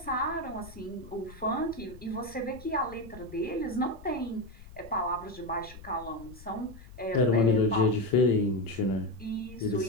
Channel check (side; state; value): left; noise; rumble, 18 dB below the sound